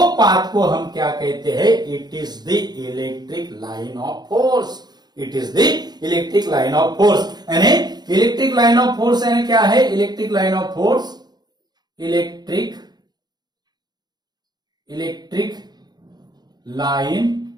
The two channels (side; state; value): left; late; 0.20 ms